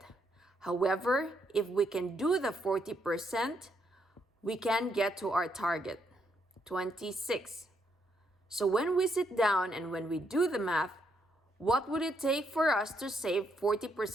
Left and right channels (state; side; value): normal; both; correlation 0.76